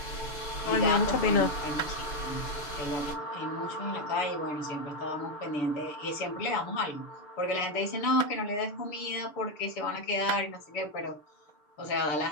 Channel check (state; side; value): late; right; 6.7 ms